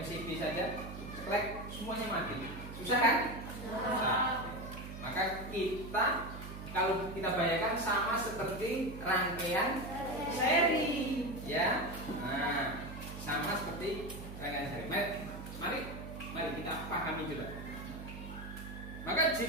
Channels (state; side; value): noise; right; hum, 11 dB below the sound